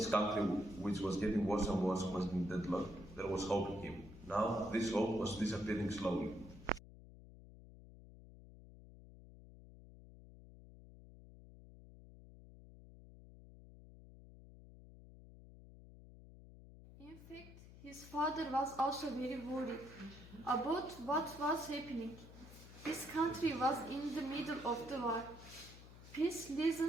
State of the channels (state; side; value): noise; left; hum, 18 dB below the sound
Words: country, which was getting worse and worse, was in deadlock, there was hope in him. Now, this hope was disappearing slowly. In fact, his father was also very worried about what was happening. His country was in the middle of the war. Peace